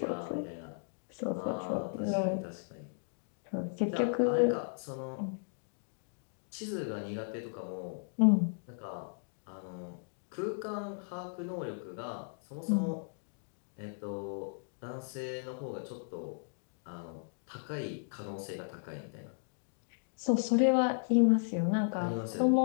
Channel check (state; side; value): silent; right; digital silence